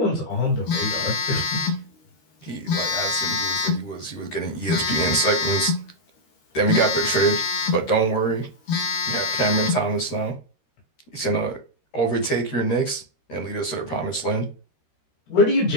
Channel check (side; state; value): right; late; 13 ms